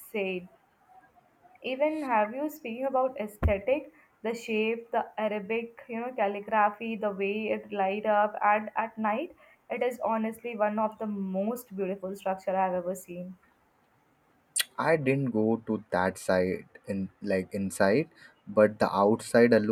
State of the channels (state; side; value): identical; both; correlation 1.00